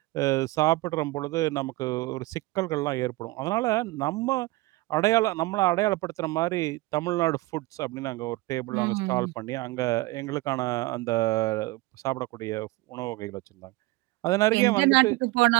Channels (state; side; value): quieter; left; 20.4 dB